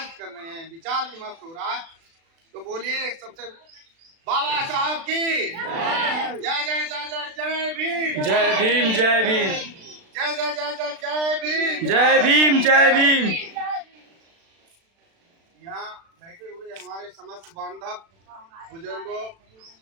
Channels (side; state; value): left; late; 36 ms